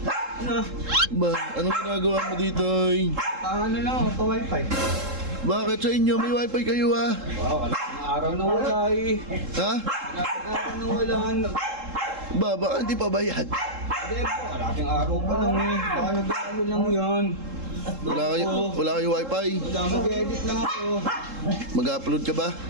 Ba, anong ginagawa mo dito? Ano lang, pa-wifi. Bakit sa inyo? May wifi kayo ah? Wow, kalaking araw na wala eh. Ha? Kalaking araw na wala. Ba, baka hindi pa bayad? Hindi po, kalaking araw pa lang eh. Baka nag-ano lang yan. Wala kayo wifi? Wala, mag-edit lang ako. Mag-upload ka ba?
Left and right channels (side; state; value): left; late; 3.7 ms